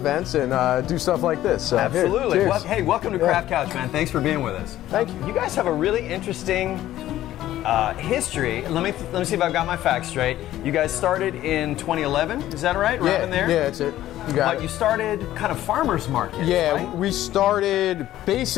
and do stuff like this. So, absolutely. Here, well, hey, welcome to Craft Couch, man. Thanks for being with us. Thank you. You guys have a really interesting history. Let me see if I've got my facts straight. You guys started in 2011, is that right? Right in there? Yeah, that's it. But you started kind of farmers markets, right? We started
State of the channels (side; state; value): right; quieter; 13.7 dB